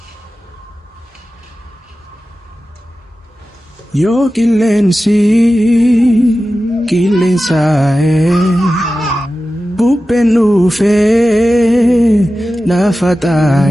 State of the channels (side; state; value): both; normal; correlation 0.94